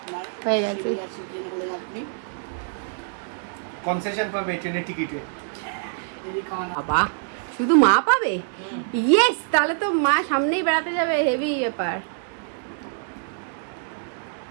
হয়ে গেছে। আপনি কনসেশন পাবে ট্রেনের টিকিটে। যদি খাওয়ানো বাবা, শুধু মা পাবে? ইয়েস, তাহলে তো মা সামনেই বেড়াতে যাবে, হেভি ব্যাপার।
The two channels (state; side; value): silent; left; digital silence